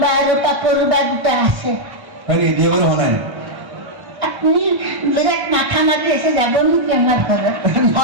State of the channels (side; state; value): left; late; 1.1 ms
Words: বা আৰু কাপোৰ বা দুটা আছে হয় নেকি বিয়া বাৰু হোৱা নাই আপুনি বিৰাট মাথা মাৰি আছে যাব নেকি আমাৰ ঘৰত